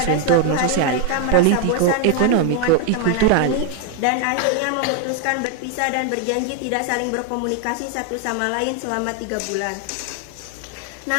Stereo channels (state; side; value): different; both; correlation 0.00